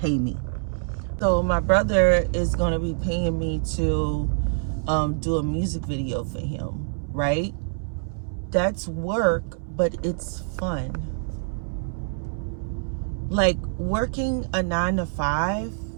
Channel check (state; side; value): silent; left; 61 dB below the other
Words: me. So my brother is going to be paying me to do a music video for him, right? That's work, but it's fun. Like, working a 9-to-5